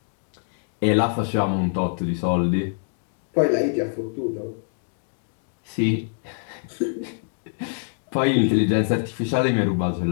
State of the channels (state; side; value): silent; right; digital silence